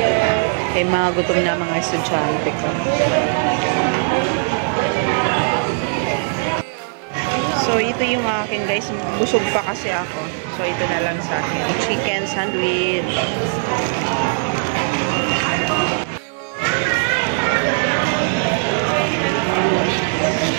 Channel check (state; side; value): silent; left; digital silence